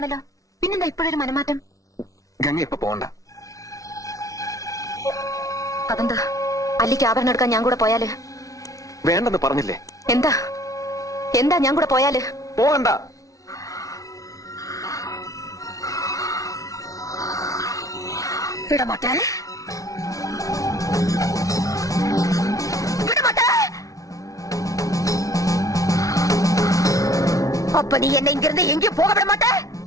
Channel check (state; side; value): late; right; 0.17 ms